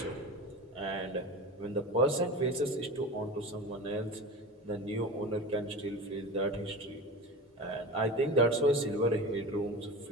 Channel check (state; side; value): normal; both; correlation 0.30